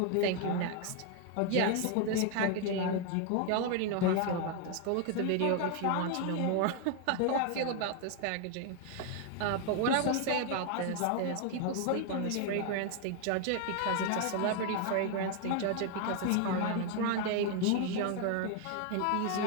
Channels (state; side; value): different; both; correlation 0.01